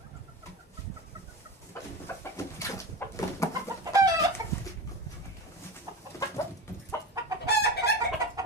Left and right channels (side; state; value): both; normal; correlation 0.25